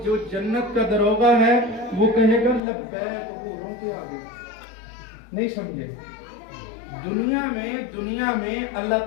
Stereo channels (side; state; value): right; drops out; at 2.6 s